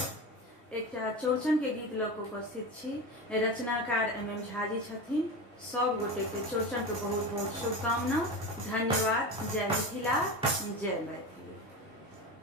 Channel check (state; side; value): normal; both; correlation 0.25